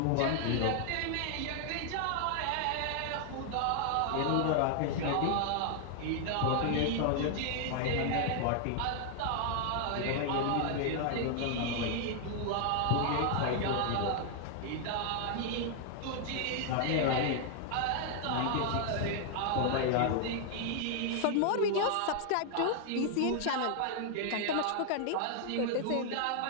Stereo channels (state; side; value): different; both; correlation 0.00